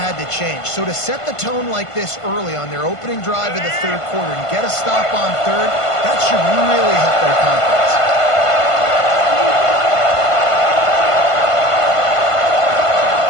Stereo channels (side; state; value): right; late; 1.5 ms